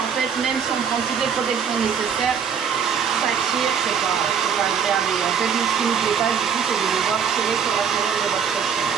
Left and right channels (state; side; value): quieter; left; 7.2 dB